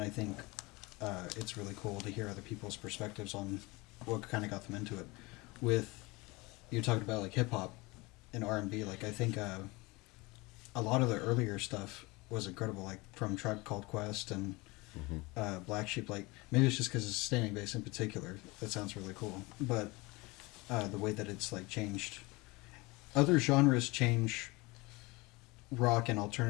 I think it's really cool to hear other people's perspectives on what kind of got them into it. With you talked about like hip hop and R&B, like I think a lot of the earlier stuff was incredible, like from Tribe Called Quest and Black Sheep. Like maybe it's just because it's Standing Bass in particular that sounds really cool, but the way that it's like changed, other genres change rock and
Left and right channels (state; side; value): quieter; right; 23.9 dB